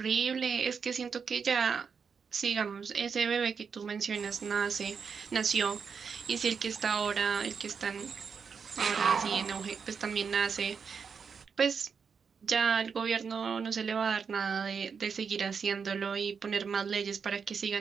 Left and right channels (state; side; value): quieter; left; 6.1 dB